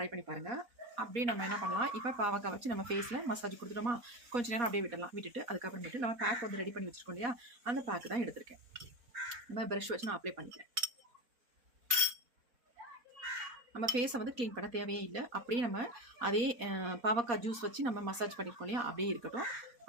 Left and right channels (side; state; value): left; late; 4.2 ms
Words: பண்ணி பாருங்கள். அப்படியே நம்ம என்ன பண்ணலாம், இப்போ பாவக்காய் வச்சு நம்ம ஃபேஸில் மசாஜ் கொடுத்துட்டோமா, கொஞ்சம் நேரம் அப்படியே விட்டுட்டு அதுக்கப்புறமேட்டு நம்ம பேக் வந்து ரெடி பண்ணி வச்சுருக்கோம் இல்லையா, அந்த பேக்கு தான் எடுத்திருக்கேன். நம்ம ப்ரஷ் வச்சு நான் அப்ளை பண்ணிக்கிறேன். நம்ம ஃபேஸை வந்து க்ளீன் பண்ண தேவையே இல்லை. அப்படியே நம்ம அதே பாவக்காய் ஜூஸ் வச்சு நம்ம மசாஜ் பண்ணியிருக்கோம் இல்லையா, அப்படியே இருக்கட்டும்.